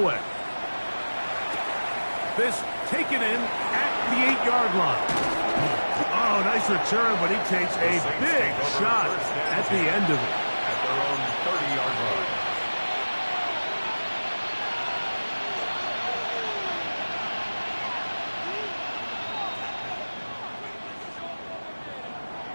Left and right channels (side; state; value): both; inverted; correlation -1.00